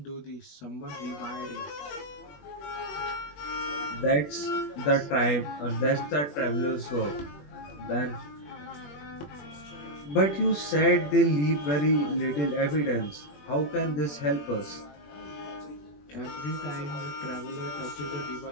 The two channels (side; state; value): right; late; 21 ms